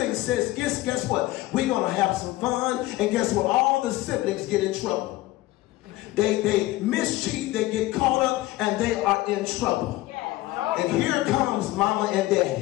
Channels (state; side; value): quieter; right; 17.8 dB